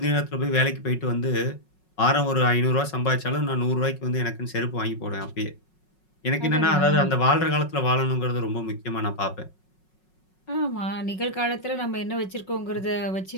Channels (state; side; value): late; right; 5.4 ms